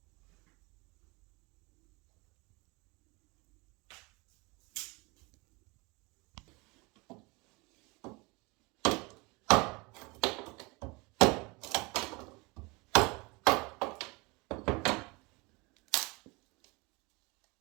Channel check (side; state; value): left; quieter; 26.5 dB